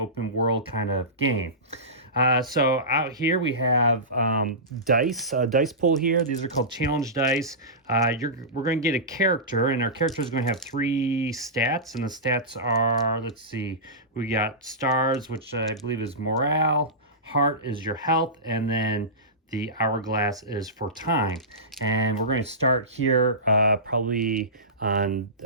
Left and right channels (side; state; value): both; normal; correlation -0.19